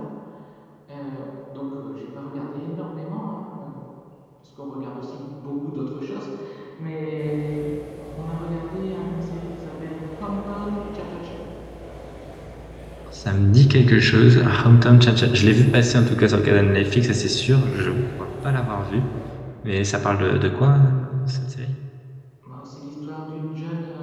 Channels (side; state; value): both; identical; correlation 1.00